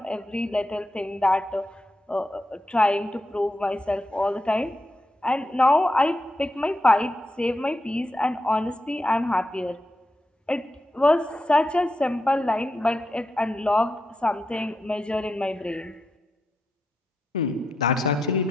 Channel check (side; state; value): both; normal; correlation 0.86